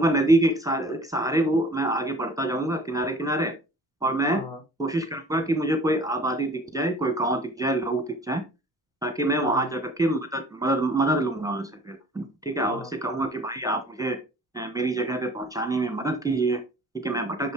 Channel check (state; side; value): normal; both; correlation 0.48